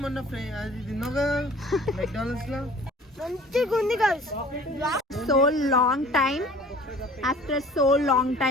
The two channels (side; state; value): both; normal; correlation 0.48